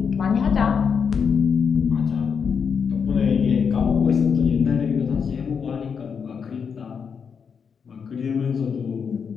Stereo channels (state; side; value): quieter; right; 6.4 dB